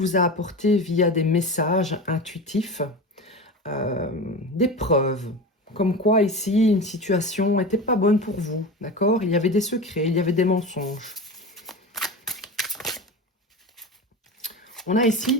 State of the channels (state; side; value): normal; both; correlation 0.27